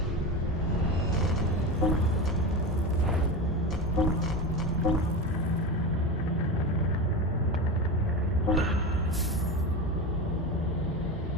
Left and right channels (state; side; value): normal; both; correlation 0.22